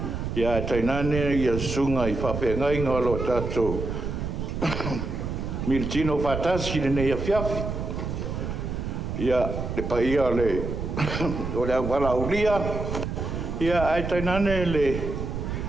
ya tainane ya sunga I fa fenga lo tato miltino fatasi nei a fiafi ya le paia le o le wala ulia ia ai tainane le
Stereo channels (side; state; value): right; noise; rumble, 4 dB below the sound